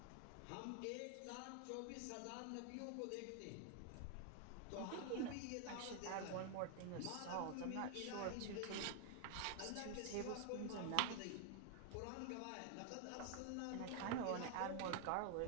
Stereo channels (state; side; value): different; both; correlation 0.00